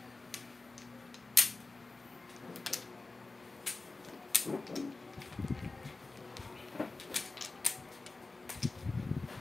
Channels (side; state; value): right; quieter; 3.5 dB